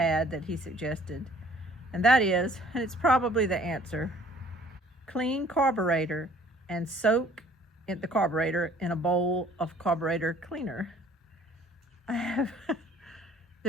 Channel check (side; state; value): both; normal; correlation 0.56